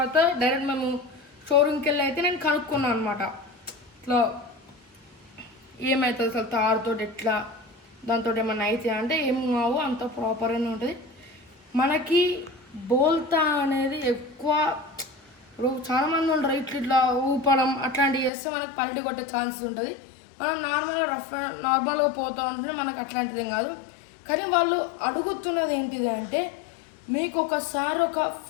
డైరెక్ట్ మేము షోరూమ్కి వెళ్ళి అయితే నేను కనుక్కున్నాను అనమాట. ఇట్లా ఏమవుతుంది అసలు తారుతో, ఎట్లా దాంతో ఏమన్నా అయితే అంటే ఏం కావు, అంత ప్రాపర్గానే ఉంటుంది. మనకి బోల్తా అనేది ఎక్కువ చాలా మంది ఉంటారు ఇట్లా ఊపడం అట్లాంటివి చేస్తే మనకు పల్టీ కొట్టే ఛాన్సెస్ ఉంటుంది. మనం నార్మల్గా పోతూ ఉంటే మనకు అట్లాంటిది ఏం కాదు. కానీ వాళ్ళు అడుగుతున్నది ఏంటిది అంటే మీకు ఒకసారి ఒక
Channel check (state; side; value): drops out; right; at 18.3 s